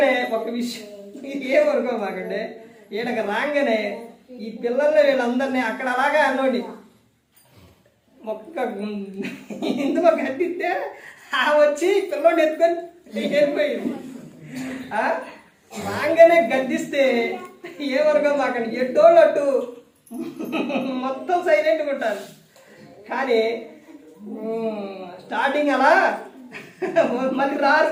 ఒక విషయం ఏమనుకో మాకండి, ఈయనకి రాగానే ఈ పిల్లల్ని వీళ్ళందరినీ అక్కడ అలాగే అన్నోండి ఒక్క ఇందులో కట్టిస్తే వచ్చి పిల్లోడిని ఎత్తుకొని వెళ్ళిపోయింది. రాగానే గద్దిస్తే ఏమనుకో మాకండి, ఎట్టోళ్ళు అట్టు మొత్తం సైలెంట్గా ఉంటారు. కానీ స్టార్టింగ్ అలా మళ్ళీ రారు,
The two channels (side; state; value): both; identical; correlation 1.00